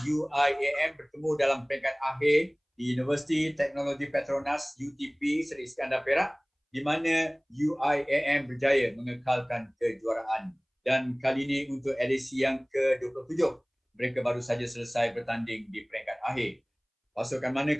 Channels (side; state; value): both; identical; correlation 1.00